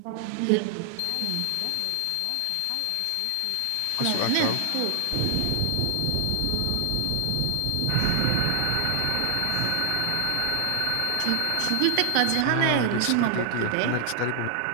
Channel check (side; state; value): both; different; correlation 0.00